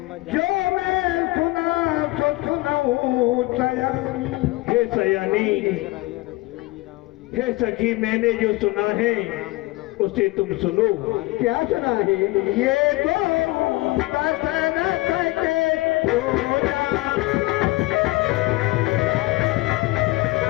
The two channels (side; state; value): right; quieter; 21.0 dB